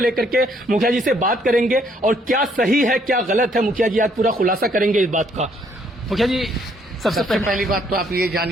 के मुखिया जी से बात करेंगे और क्या सही है क्या गलत है, मुखिया जी आज पूरा खुलासा करेंगे इस बात का। मुखिया जी सबसे पहली बात तो आप ये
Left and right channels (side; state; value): both; normal; correlation 0.67